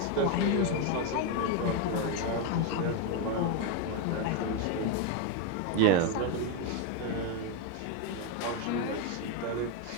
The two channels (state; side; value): different; both; correlation 0.02